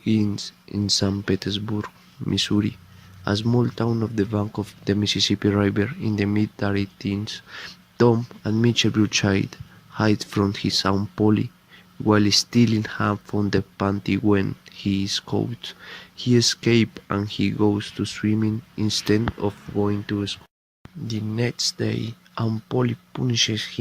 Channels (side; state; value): both; identical; correlation 1.00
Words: in St. Petersburg, Missouri, a small town off the bank of the Mississippi River in the mid-teens. Tom and Mitchell Bruchide hide from his Aunt Polly while stealing ham from the pantry when he is caught. He escapes and he goes to swimming instead of going to school. The next day, Aunt Polly punishes